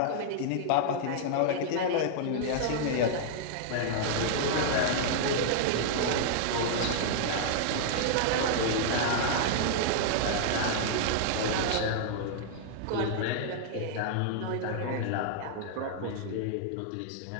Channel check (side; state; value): both; different; correlation -0.01